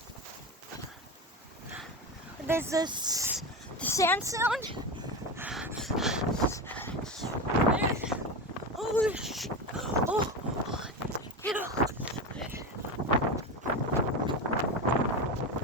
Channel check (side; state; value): both; normal; correlation 0.20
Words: There's this the sand sound. Oh shit. Oh.